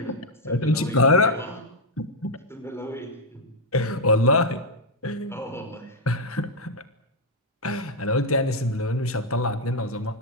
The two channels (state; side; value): normal; both; correlation 0.00